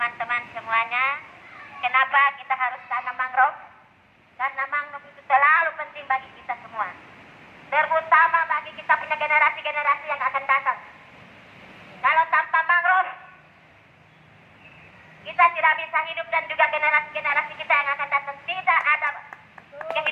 semuanya, kenapa kita harus tanam mangrove? Karena mangrove itu terlalu penting bagi kita semua. Terutama bagi kita punya generasi-generasi yang akan datang. Kalau tanpa mangrove, kita tidak bisa hidup dan juga generasi-generasi kita yang akan datang tidak ada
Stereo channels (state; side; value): identical; both; correlation 1.00